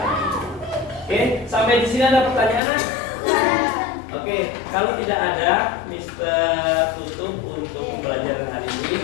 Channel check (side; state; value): right; drops out; at 2.6 s